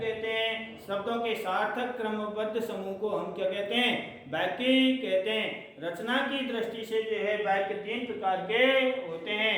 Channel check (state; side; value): identical; both; correlation 1.00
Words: हैं। शब्दों के सार्थक क्रमबद्ध समूह को हम क्या कहते हैं? वाक्य कहते हैं। रचना की दृष्टि से जो है वाक्य तीन प्रकार के होते